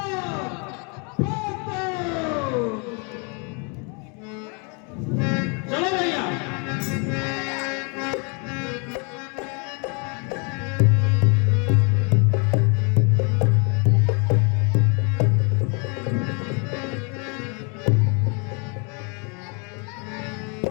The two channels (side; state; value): right; quieter; 34.8 dB